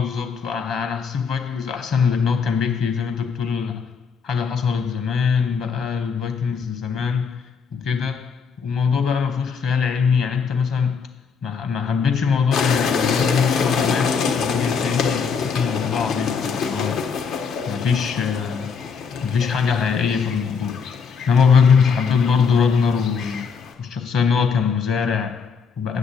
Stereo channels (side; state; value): right; quieter; 5.9 dB